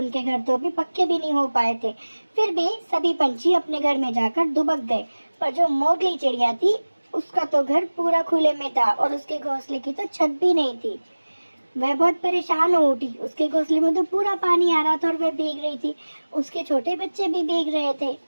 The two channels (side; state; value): both; inverted; correlation -1.00